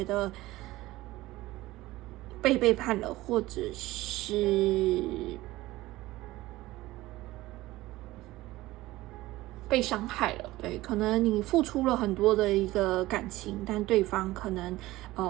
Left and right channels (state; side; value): quieter; left; 17.8 dB